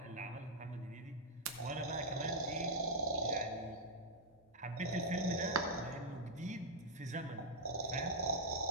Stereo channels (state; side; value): normal; both; correlation -0.04